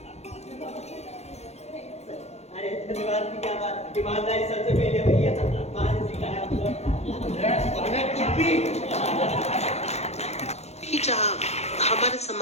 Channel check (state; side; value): late; right; 0.31 ms